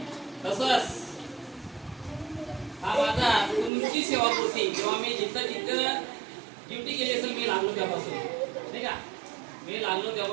तसंच हा माझा तुमची सेवापूर्ती जेव्हा मी जिथं ड्युटी केली असेल मी लागलो त्यापासून नाही का, मी लागलो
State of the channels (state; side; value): drops out; left; at 3.7 s